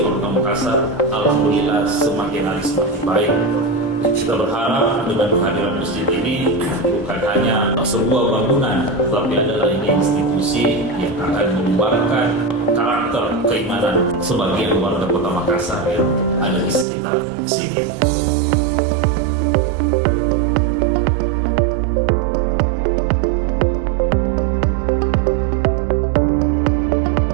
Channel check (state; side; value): drops out; left; at 16.9 s